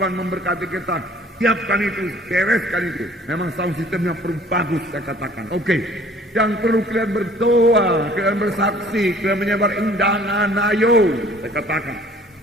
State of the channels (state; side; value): normal; both; correlation 0.54